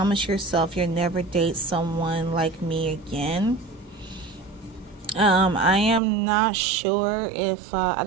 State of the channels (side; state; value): left; drops out; at 6.0 s